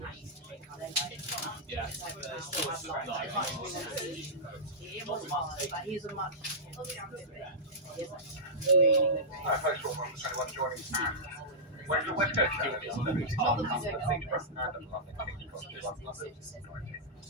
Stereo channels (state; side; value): normal; both; correlation -0.15